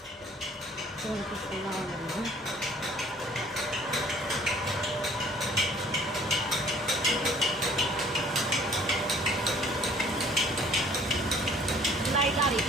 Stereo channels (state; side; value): normal; both; correlation 0.56